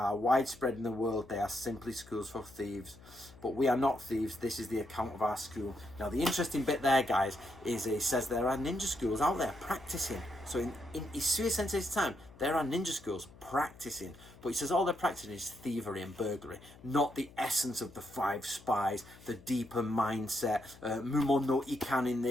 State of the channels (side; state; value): left; noise; hum, 22 dB below the sound